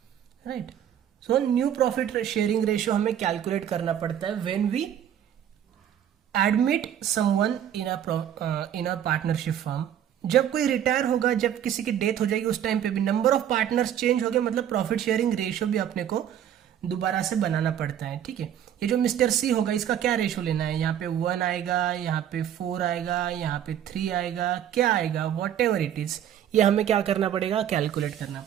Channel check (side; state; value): left; quieter; 10.1 dB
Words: right. So new profit sharing ratio हमें कैलकुलेट करना पड़ता है when we admit someone in a partnership firm. जब कोई रिटायर होगा, जब किसी की डेथ हो जाएगी, उस टाइम पे भी नंबर ऑफ पार्टनर्स चेंज हो गए, मतलब प्रॉफिट शेयरिंग रेशियो भी अपने को दोबारा से बनाना पड़ता है. ठीक है, ये जो मिस्टर सी होगा इसका क्या रेशियो लेना है, यहाँ पे 1 आएगा, यहाँ पे 4 आएगा, यहाँ पे 3 आएगा, क्या आएगा, वॉट एवर इट इज, ये हमें क्या करना पड़ेगा, कैलकुलेट करना